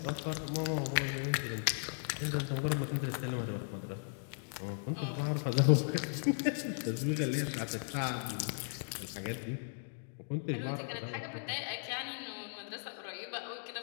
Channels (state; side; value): silent; right; digital silence